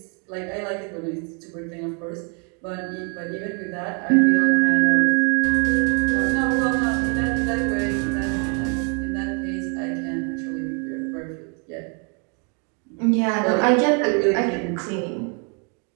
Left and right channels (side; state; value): left; quieter; 37.0 dB